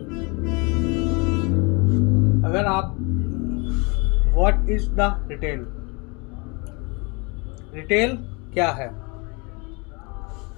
अगर आप what is the retail? Retail क्या है?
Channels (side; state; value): right; quieter; 29.6 dB